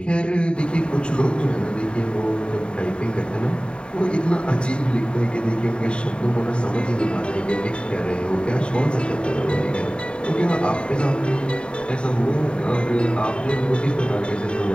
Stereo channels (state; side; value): late; right; 0.053 ms